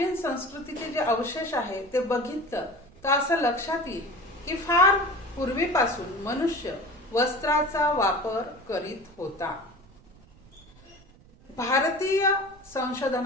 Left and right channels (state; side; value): noise; right; rumble, 26 dB below the sound